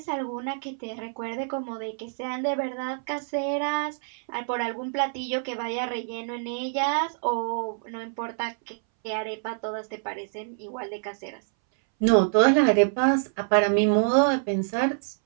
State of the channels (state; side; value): silent; left; 61 dB below the other